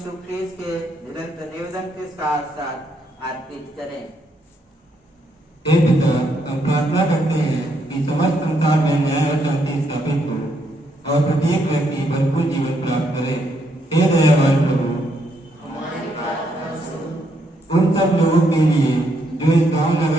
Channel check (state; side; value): normal; both; correlation 0.75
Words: ख्रीस्त के निरंतर निवेदन के साथ साथ अर्पित करें। हे पिता, हम प्रार्थना करते हैं कि समस्त संसार में न्याय और शांति स्थापित हो और प्रत्येक व्यक्ति भरपूर जीवन प्राप्त करे। हे दयावान प्रभु, हमारी प्रार्थना सुन। उन सब लोगों के लिए जो इस गांव